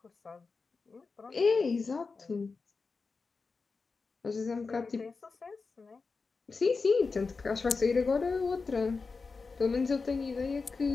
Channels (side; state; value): right; quieter; 4.4 dB